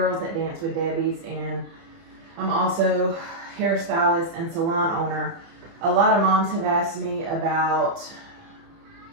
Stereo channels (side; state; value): left; late; 30 ms